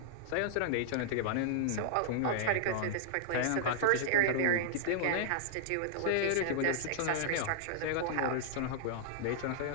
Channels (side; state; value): both; different; correlation -0.01